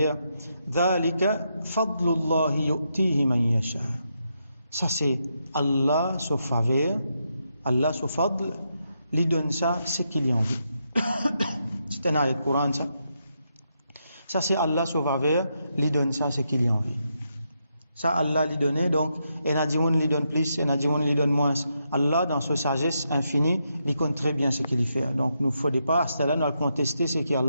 ذلك فضل الله يؤتيه من يشاء. Ça c'est Allah sous faveur, Allah sous fadl, lui donne ça ce qu'il y a envie. C'est un ayat de Coran ça. Ça c'est Allah sous faveur, lui donne ça ce qu'il y a envie. Ça Allah lui donne, donc et Nadimoun lui donne plus, et Nadimoun lui donne moins. Allah, dans sa sagesse infinie, il connaît très bien ce qu'il fait. Donc, nous ne faut pas, à ce là nous allons contester ce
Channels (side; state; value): both; inverted; correlation -0.82